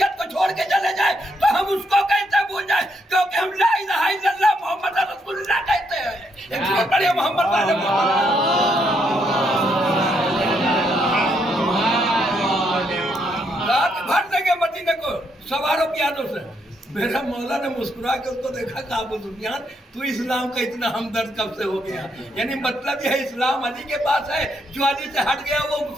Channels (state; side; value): normal; both; correlation 0.76